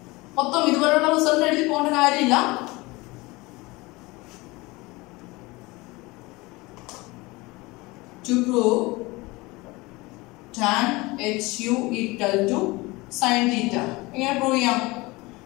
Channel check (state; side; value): quieter; right; 22.8 dB